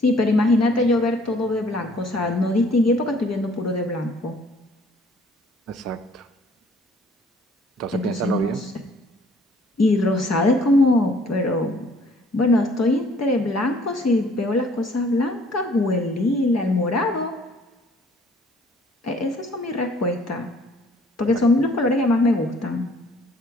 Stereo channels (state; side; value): normal; both; correlation 0.58